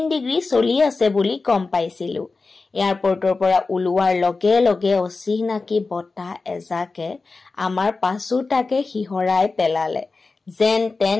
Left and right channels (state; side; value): quieter; right; 3.9 dB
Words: ডিগ্ৰী চলি আছে বুলি গম পাইছিলো এয়াৰপৰ্টৰ পৰা উলুৱাৰ লগে লগে অচিনাকি বতাহ এজাকে আমাৰ পাছুটাকে হিহৰাই পেলালে যেন